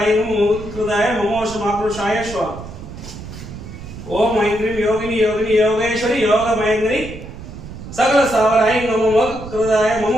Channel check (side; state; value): right; noise; rumble, 12 dB below the sound